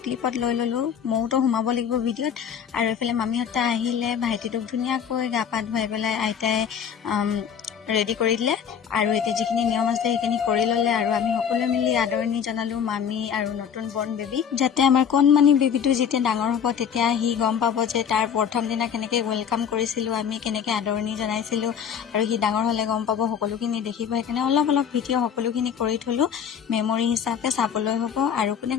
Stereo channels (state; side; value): quieter; right; 7.9 dB